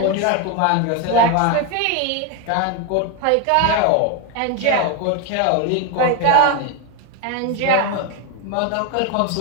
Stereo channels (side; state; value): both; different; correlation 0.02